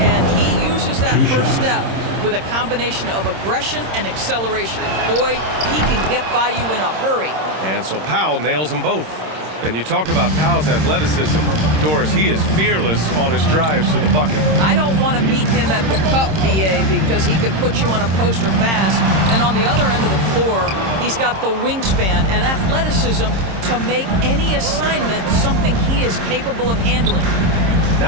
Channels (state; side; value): late; left; 26 ms